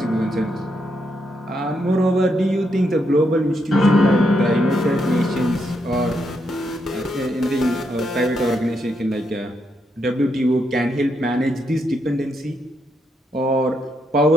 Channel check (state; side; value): normal; both; correlation 0.79